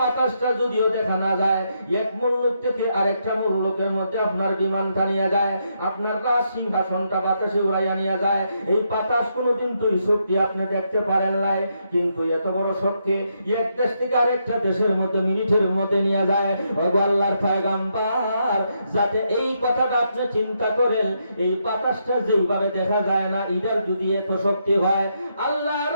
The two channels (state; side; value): inverted; both; correlation -0.79